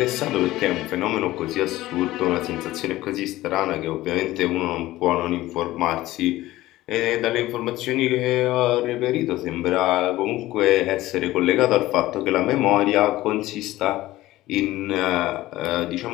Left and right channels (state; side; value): quieter; right; 16.7 dB